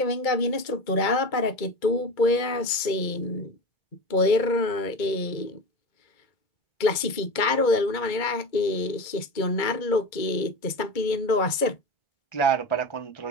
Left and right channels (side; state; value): right; late; 2.2 ms